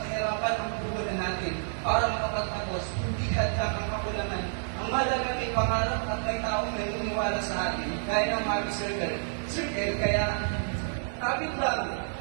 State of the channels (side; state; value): left; silent; digital silence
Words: kahirapan ang puhunan natin para makapagtapos. Hindi hadlang ang kakulangan. Ang mahalaga may pangarap at may taong naniniwala sa atin, gaya ng Happy Circle. Kaya kapit